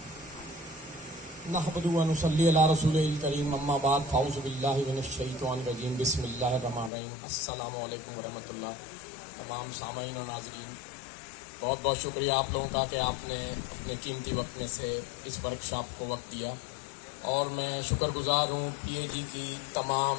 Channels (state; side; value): drops out; right; at 6.9 s